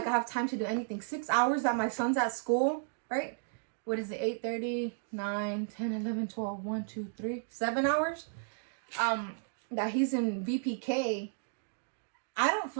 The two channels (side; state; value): left; silent; digital silence